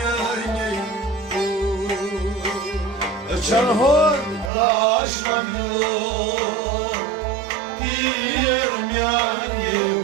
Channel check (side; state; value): left; drops out; at 4.5 s